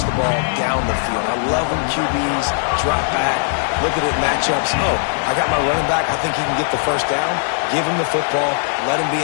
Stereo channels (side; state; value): right; silent; digital silence